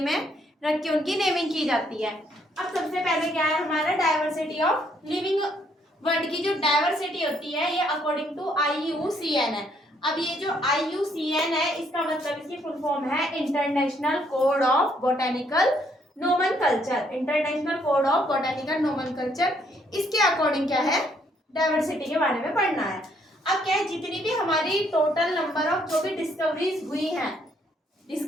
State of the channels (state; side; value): normal; both; correlation 0.69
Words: में रख के उनकी नेमिंग की जाती है। अब सबसे पहले क्या है हमारा डाइवर्सिटी ऑफ लिविंग वर्ल्ड की जो डाइवर्सिटी होती है ये अकॉर्डिंग टू IUCN है। अब ये जो IUCN है इसका मतलब इसकी फुल फॉर्म है international code of botanical nomenclature. International code of botanical nomenclature, इसके अकॉर्डिंग क्या है डाइवर्सिटी के बारे में पढ़ना है। अब क्या है, जितनी भी हमारी टोटल नंबर ऑफ जो भी डिस्कवरीज हुई हैं,